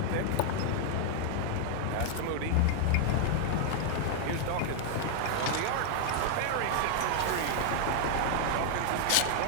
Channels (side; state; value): both; different; correlation 0.00